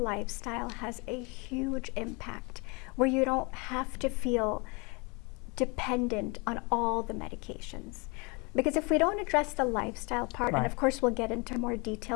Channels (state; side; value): quieter; right; 29.6 dB